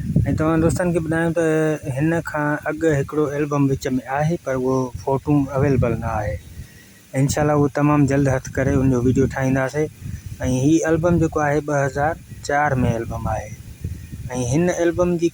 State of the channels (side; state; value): both; identical; correlation 1.00